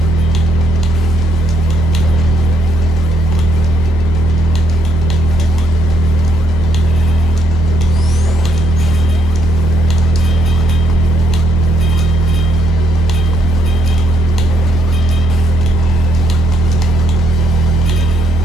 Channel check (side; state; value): both; normal; correlation 0.70